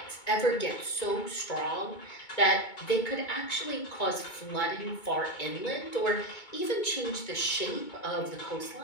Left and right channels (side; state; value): right; late; 2.2 ms